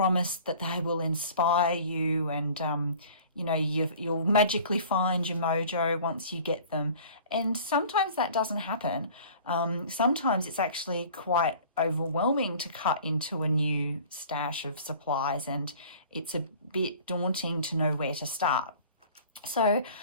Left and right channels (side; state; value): both; inverted; correlation -0.47